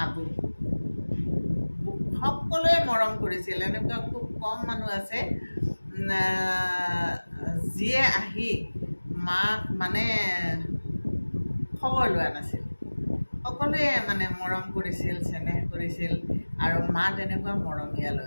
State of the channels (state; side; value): inverted; both; correlation -1.00